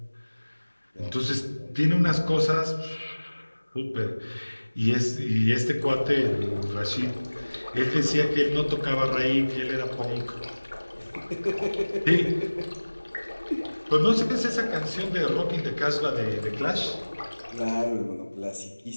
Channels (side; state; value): both; inverted; correlation -1.00